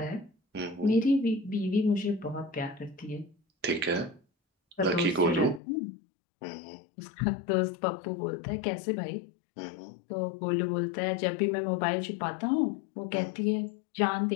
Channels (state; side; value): drops out; right; at 5.6 s